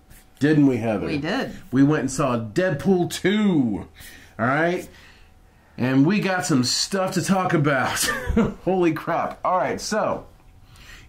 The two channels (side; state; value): both; identical; correlation 1.00